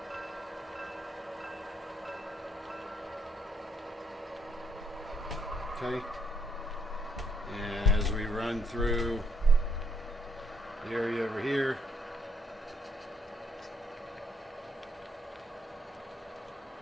Okay, and as we run through the area over here,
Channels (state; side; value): normal; both; correlation 0.70